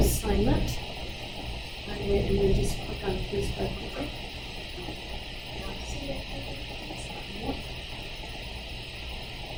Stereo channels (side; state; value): both; identical; correlation 1.00